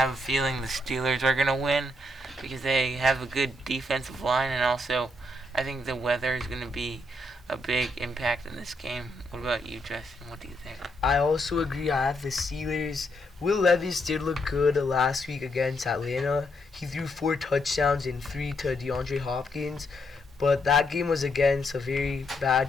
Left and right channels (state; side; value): normal; both; correlation 0.77